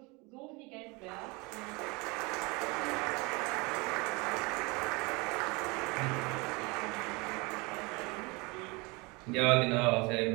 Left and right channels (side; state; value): left; quieter; 26.9 dB